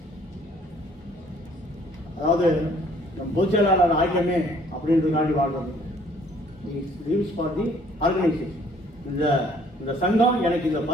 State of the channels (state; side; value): normal; both; correlation 0.60